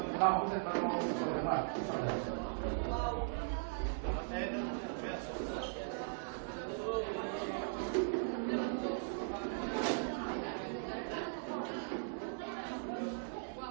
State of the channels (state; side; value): silent; left; 52 dB below the other